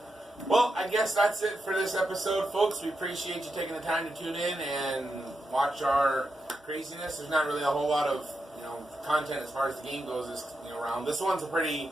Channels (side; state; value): both; normal; correlation 0.86